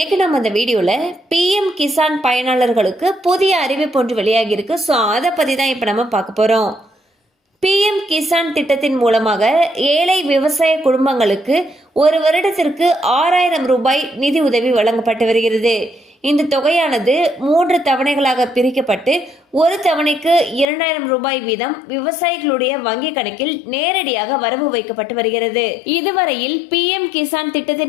நம்ம அந்த வீடியோல பிஎம் கிசான் பயனாளர்களுக்கு புதிய அறிவிப்பு ஒன்று வெளியாகி இருக்கு. ஸோ அதை பத்தி தான் இப்ப நம்ம பார்க்க போறோம். பிஎம் கிசான் திட்டத்தின் மூலமாக ஏழை விவசாய குடும்பங்களுக்கு ஒரு வருடத்திற்கு 6000 ரூபாய் நிதி உதவி வழங்கப்பட்டு வருகிறது. இந்த தொகையானது 3 தவணைகளாக பிரிக்கப்பட்டு ஒரு தவணைக்கு 2000 ரூபாய் வீதம் விவசாயிகளுடைய வங்கி கணக்கில் நேரடியாக வரவு வைக்கப்பட்டு வருகிறது. இதுவரையில் பிஎம் கிசான்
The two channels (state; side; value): drops out; right; at 20.7 s